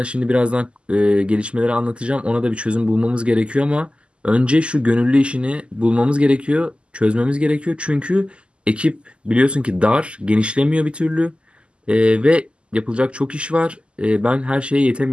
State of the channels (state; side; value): late; left; 0.052 ms